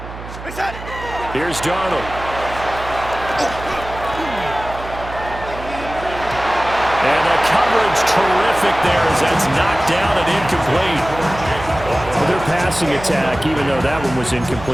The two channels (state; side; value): noise; right; hum, 12 dB below the sound